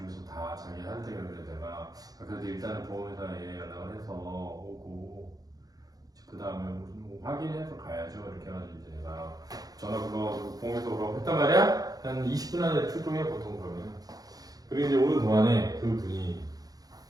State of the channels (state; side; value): late; left; 0.18 ms